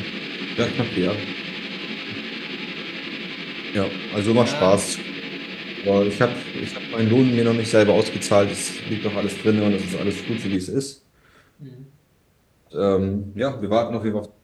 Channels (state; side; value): identical; both; correlation 1.00